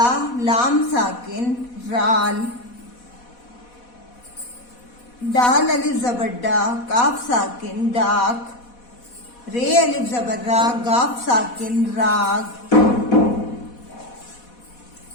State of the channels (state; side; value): late; right; 4.1 ms